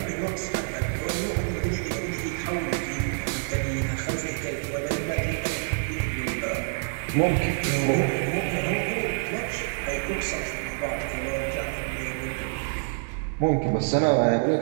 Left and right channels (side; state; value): left; silent; digital silence